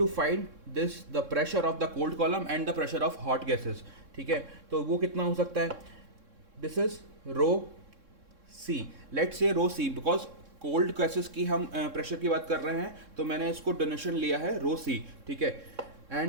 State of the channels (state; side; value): late; left; 3.6 ms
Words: find this the pressure of the cold column and the pressure of hot gases, ठीक है। तो वो कितना हो सकता है? This is rho C, let's say rho C, because cold gases की हम प्रेशर की बात कर रहे हैं, तो मैंने इसको डोनेशन लिया है रो सी, ठीक है।